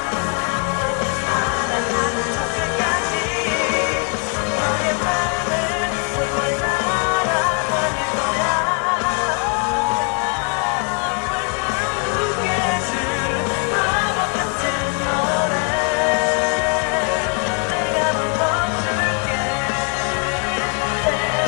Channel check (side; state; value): right; quieter; 38.7 dB